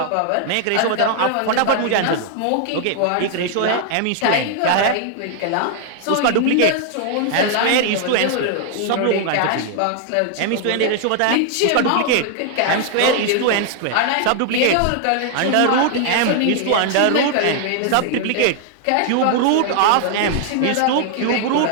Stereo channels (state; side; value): different; both; correlation 0.00